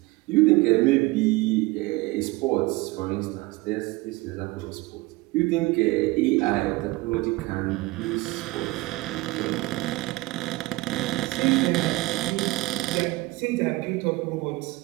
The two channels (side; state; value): left; quieter; 21.7 dB